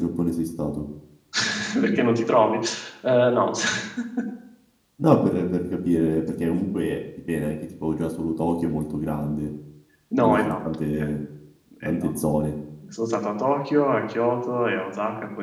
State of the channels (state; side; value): identical; both; correlation 1.00